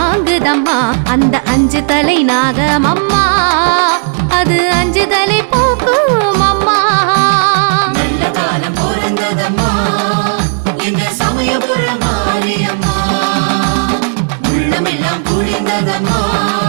அந்த 5 தலை நாகமம்மா. அது 5 தலை போக்கும் அம்மா. நல்ல காலம் பிறந்ததம்மா எங்க சமயபுர மாரியம்மா. உள்ளமெல்லாம் குளிர்ந்ததம்மா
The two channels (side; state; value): left; silent; digital silence